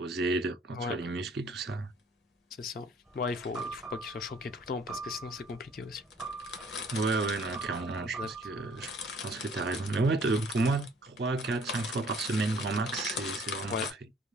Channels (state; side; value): normal; both; correlation 0.57